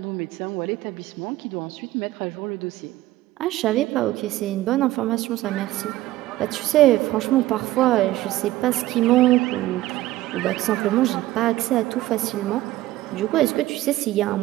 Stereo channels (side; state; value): left; quieter; 16.1 dB